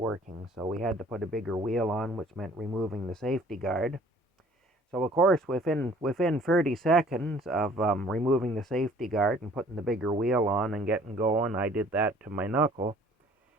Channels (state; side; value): normal; both; correlation 0.54